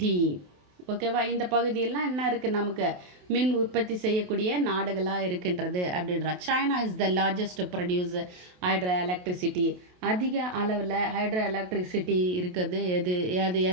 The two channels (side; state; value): left; late; 28 ms